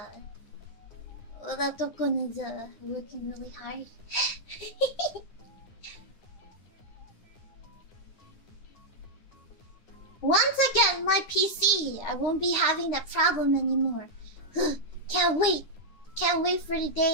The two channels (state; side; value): late; right; 9.7 ms